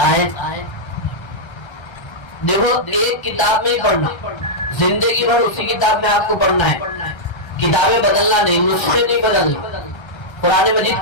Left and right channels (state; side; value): late; right; 1.3 ms